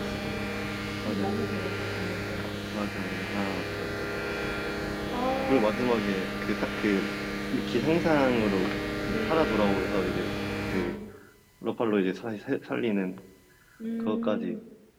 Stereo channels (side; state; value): both; identical; correlation 1.00